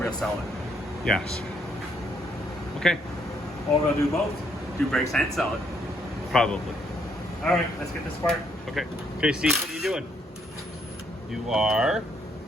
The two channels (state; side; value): normal; both; correlation 0.71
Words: sell it. yes. Okay, Or we'll do both. Do brakes and sell it. probably. Alright, let's get this part. Okay, okay, Steve, what are you doing? You are,